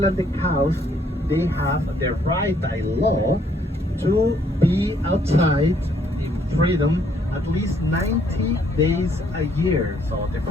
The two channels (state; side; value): normal; both; correlation 0.67